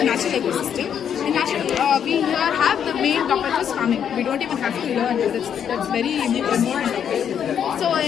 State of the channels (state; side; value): quieter; right; 8.5 dB